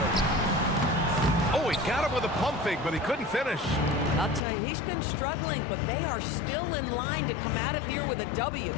Oh, he got him with a pump fake, but he couldn't finish. I'll tell you, he's been struggling, but they are still in line to come out of here with a W.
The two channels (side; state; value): right; drops out; at 4.4 s